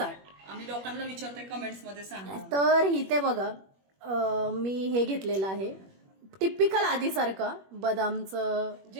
आम्ही लोकांना विचारतोय कमेंट्स मध्ये सांगा. तर इथे बघा मी हे घेतलेलं आहे टिपिकल आधीसारखं बदामचं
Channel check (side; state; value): left; late; 21 ms